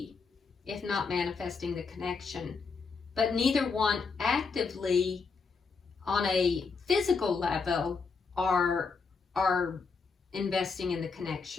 if not manifesting the connection. But neither one actively, on a physical level, are investing in the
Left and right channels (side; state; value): right; quieter; 4.9 dB